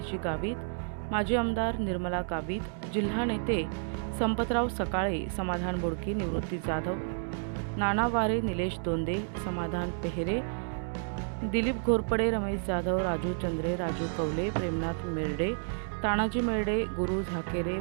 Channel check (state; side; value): silent; left; digital silence